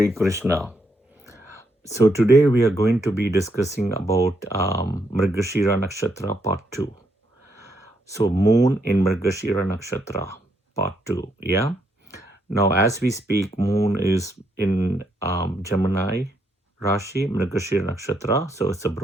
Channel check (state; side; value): normal; both; correlation 0.76